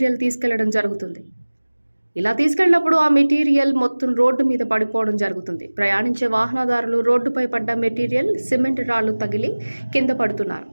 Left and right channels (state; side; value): inverted; both; correlation -1.00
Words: తీసుకెళ్లడం జరుగుతుంది. ఇలా తీసుకెళ్లినప్పుడు ఆ మెటీరియల్ మొత్తం రోడ్డు మీద పడిపోవడం జరుగుతుంది. ప్రయాణించే వాహనదారులు రోడ్డుపై పడ్డ మెటీరియల్, సిమెంట్ రాళ్లు తగిలి కింద పడుతున్నారు.